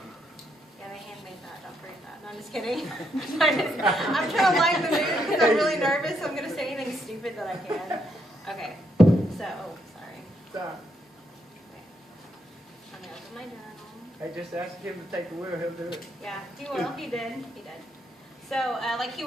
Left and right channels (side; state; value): both; normal; correlation 0.76